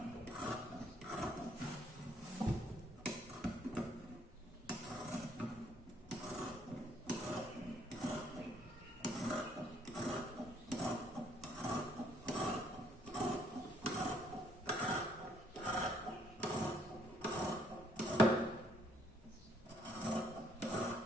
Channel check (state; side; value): normal; both; correlation 0.67